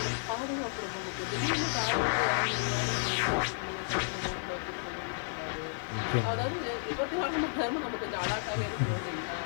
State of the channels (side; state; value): right; silent; 56 dB below the other